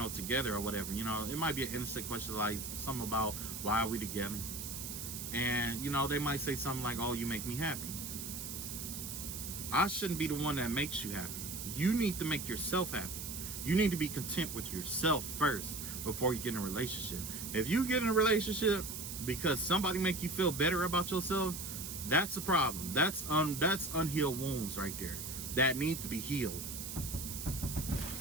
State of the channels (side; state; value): right; noise; hiss, 7 dB below the sound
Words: together or whatever. It might be an innocent question, like something about why are we together? And, they might say something like, oh, you make me happy. I shouldn't be the one that makes you happy. You need to make yourself happy. You need to be content with yourself first before you get in a relationship. If you get in a relationship because somebody make you feel better about yourself, that's a problem. That's unhealed wounds right there that need to be healed.